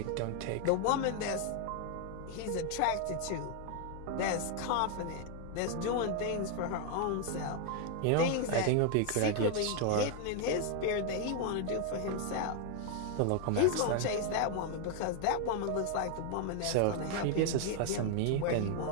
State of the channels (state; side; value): different; both; correlation 0.00